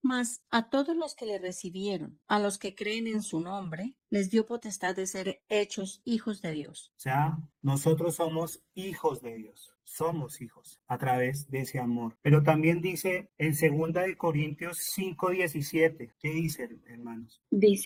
Mas a todos los que le recibieron, a los que creen en su nombre, les dio potestad de ser hechos hijos de Dios. O sea, nosotros somos hijos de Dios, somos hijos a través de ese amor. Pero también dice en 2 Corintios 5:17, ¿qué dice, hermanos?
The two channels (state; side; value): identical; both; correlation 1.00